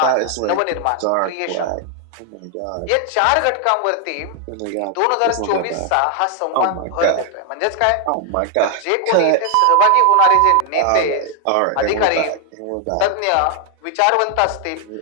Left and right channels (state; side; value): different; both; correlation 0.00